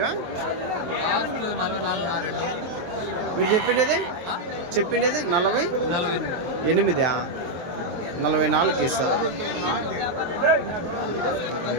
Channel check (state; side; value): late; left; 23 ms